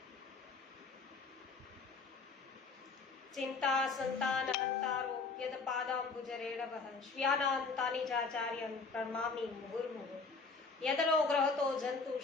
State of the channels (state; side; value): quieter; right; 4.4 dB